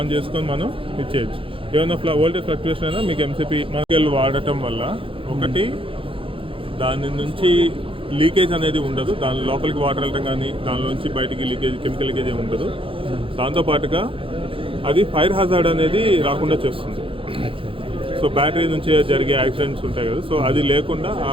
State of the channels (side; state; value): left; late; 0.26 ms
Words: చేసుకొని మనం ఇచ్చేయచ్చు. ఏమైనా వోల్టేజ్ ఫ్లక్చుయేషన్ అయినా మీకు ఎంసీపీ మనకి వాడటం వల్ల ఒకటి దాని నుంచి లీకేజ్ అనేది ఉండదు, దాని లోపలికి వాటర్ వెళ్ళటం కానీ దానిలోంచి బయటికి లీకేజ్, కెమికల్ లీకేజ్ ఏమి ఉండదు. దాంతోపాటుగా అది ఫైర్ హజార్డ్ అనేది రాకుండా చేస్తుంది. సో బ్యాటరీ నుంచి జరిగే యాక్సిడెంట్స్ ఉంటాయి కదా, సో అది లేకుండా ఆ